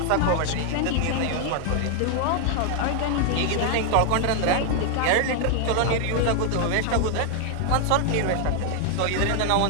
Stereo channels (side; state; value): both; different; correlation 0.00